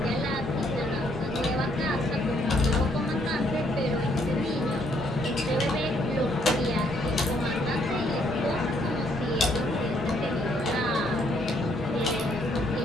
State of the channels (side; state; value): both; normal; correlation 0.70